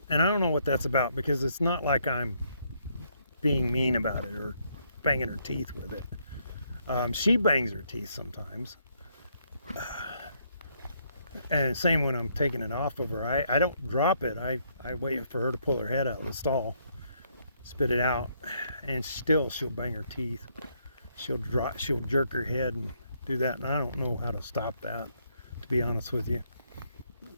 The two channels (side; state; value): both; inverted; correlation -0.72